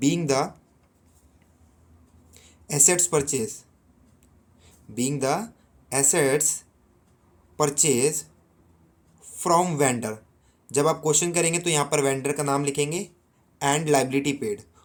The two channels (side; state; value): both; identical; correlation 1.00